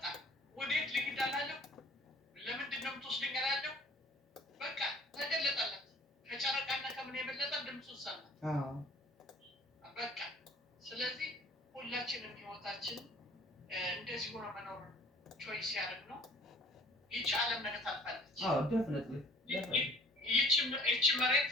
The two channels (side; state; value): both; normal; correlation 0.52